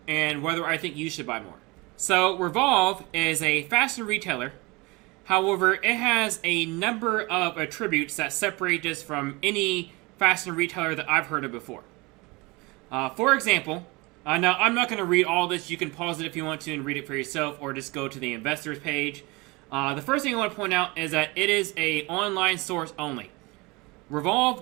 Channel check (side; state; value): left; quieter; 24.9 dB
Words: and whether I think you should buy more. So, Revolve is a fashion retailer. However, it has a number of attributes that separate this from any fashion retailer that I've heard of before. For example, now I'm not going to read all this. You can pause it if you want to and read it for yourself, or just go to the investors page. The first thing I want to point out is that it is an online source only. Revolve